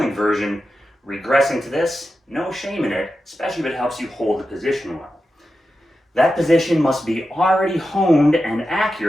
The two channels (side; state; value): both; normal; correlation 0.91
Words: version, regressing to this, no shame in it, especially if it helps you hold the position well. That position must be already honed and